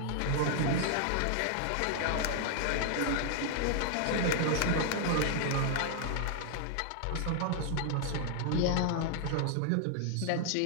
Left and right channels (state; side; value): different; both; correlation 0.00